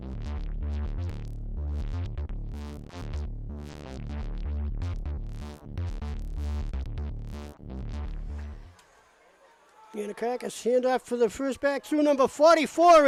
Yanakakis handoff for the first back through number 44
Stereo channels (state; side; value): identical; both; correlation 1.00